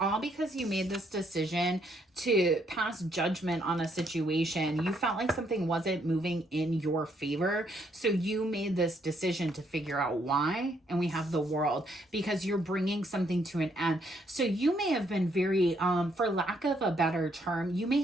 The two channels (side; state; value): both; normal; correlation 0.71